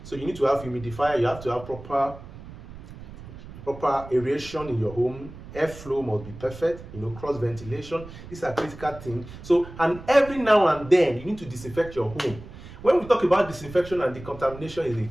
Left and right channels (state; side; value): noise; right; rumble, 15 dB below the sound